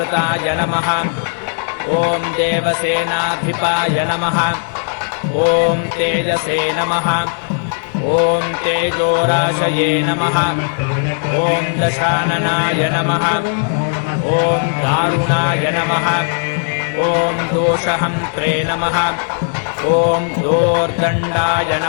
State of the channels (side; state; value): right; silent; digital silence